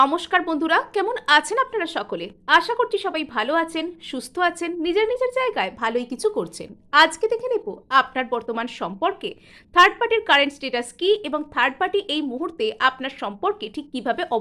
বন্ধুরা, কেমন আছেন আপনারা সকলে? আশা করছি সবাই ভালো আছেন, সুস্থ আছেন, নিজের নিজের জায়গায় ভালোই কিছু করছেন। আজকে দেখে নেব আপনার বর্তমান সম্পর্কে থার্ড পার্টির কারেন্ট স্ট্যাটাস কি এবং থার্ড পার্টি এই মুহূর্তে আপনার সম্পর্কে ঠিক কিভাবে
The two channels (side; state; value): both; identical; correlation 1.00